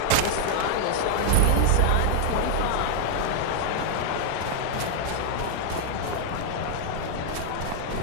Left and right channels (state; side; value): different; both; correlation 0.00